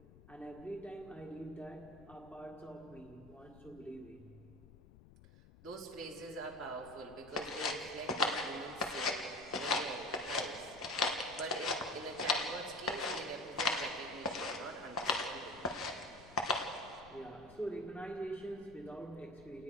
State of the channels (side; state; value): left; noise; rumble, 20 dB below the sound